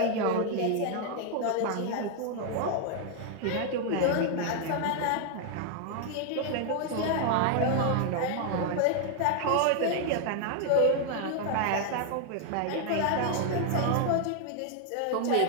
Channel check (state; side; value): different; both; correlation 0.00